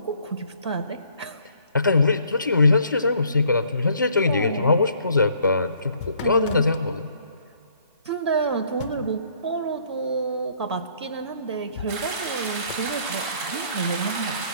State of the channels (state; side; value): inverted; both; correlation -0.63